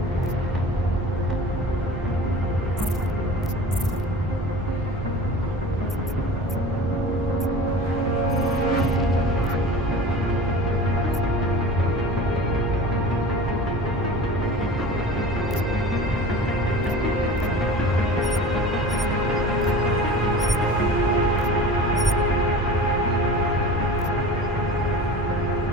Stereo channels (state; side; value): normal; both; correlation 0.38